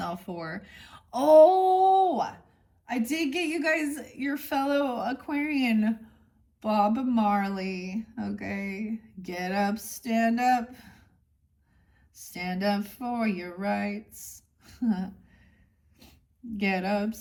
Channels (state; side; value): identical; both; correlation 1.00